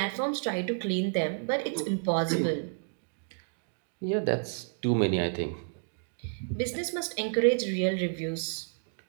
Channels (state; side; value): silent; left; digital silence